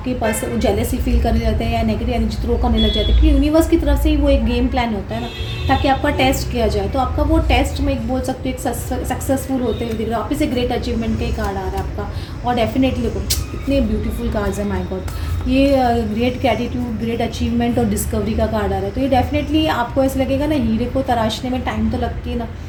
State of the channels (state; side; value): identical; both; correlation 1.00